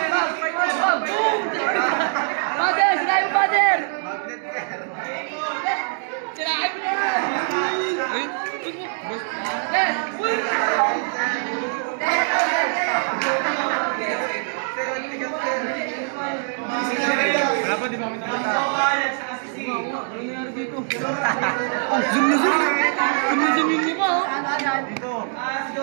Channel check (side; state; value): left; silent; 59 dB below the other